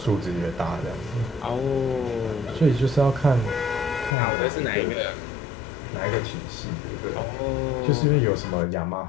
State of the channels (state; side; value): drops out; right; at 4.2 s